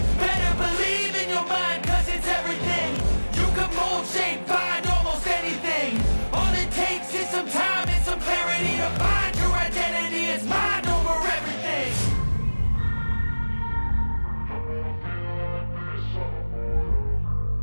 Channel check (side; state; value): both; inverted; correlation -1.00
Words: Better believe in your mind, cause it's everything. You can mold, shape, find almost anything. All it takes is some time and some clarity to find your identity. It's mind over everything.